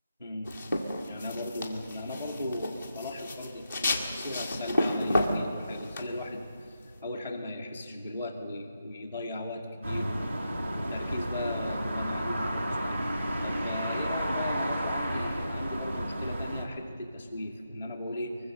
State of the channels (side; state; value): both; inverted; correlation -0.85